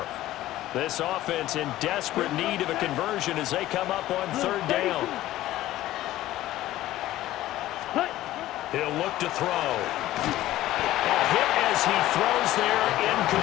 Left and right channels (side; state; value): right; quieter; 15.0 dB